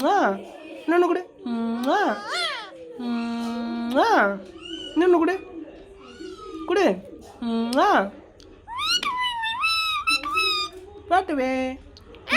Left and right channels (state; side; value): identical; both; correlation 1.00